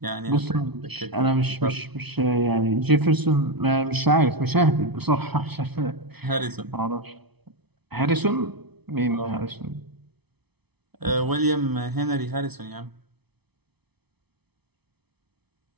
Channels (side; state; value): left; late; 0.99 ms